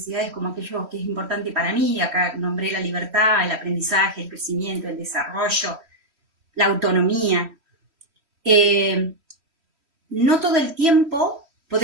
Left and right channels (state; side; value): late; left; 3.1 ms